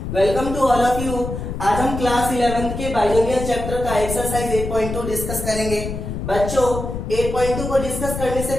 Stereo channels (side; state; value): left; noise; rumble, 6 dB below the sound